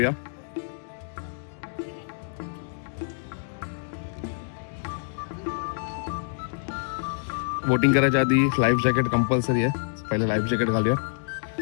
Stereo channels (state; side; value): silent; right; digital silence